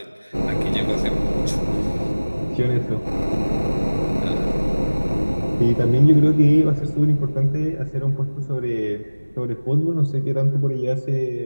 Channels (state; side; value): inverted; both; correlation -1.00